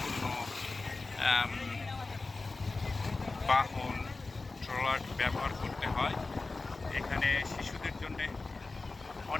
বাহন ট্রলার ব্যবহার করতে হয়। এখানে শিশুদের জন্য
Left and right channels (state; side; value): quieter; right; 3.6 dB